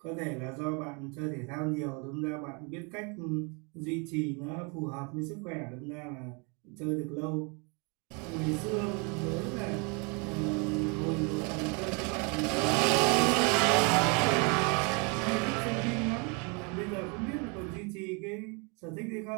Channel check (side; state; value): left; quieter; 33.0 dB